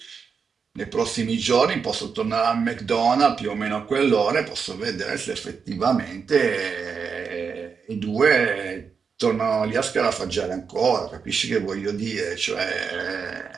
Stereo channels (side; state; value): left; quieter; 5.9 dB